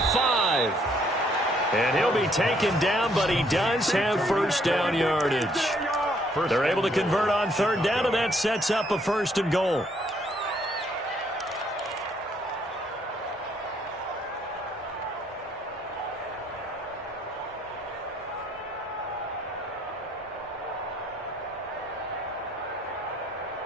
And he'll be taken down, but he does have first down yardage. They're able to convert on third down, and that sets up a 1st and goal.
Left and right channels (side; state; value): both; normal; correlation 0.67